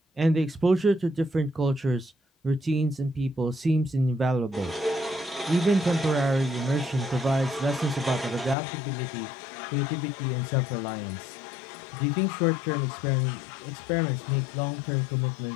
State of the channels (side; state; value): right; drops out; at 8.6 s